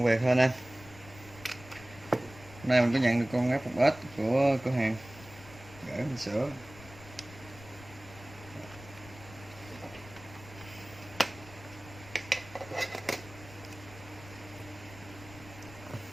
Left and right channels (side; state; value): left; noise; rumble, 18 dB below the sound